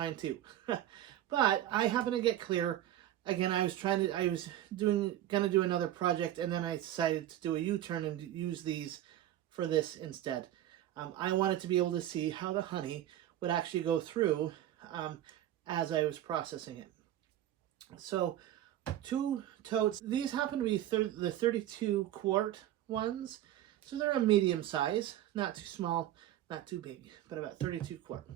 too. But I happen to get clear. Again, I was gonna do another project, and then I decided to do a U-turn and use these for this instead. I wanted to be able to see how the honey would actually go through as I was processing it. So 2 totes. These happen to be the 32 quart ones. So they're a medium size, not too small, not too big, but about 32 quart.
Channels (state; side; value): quieter; left; 12.8 dB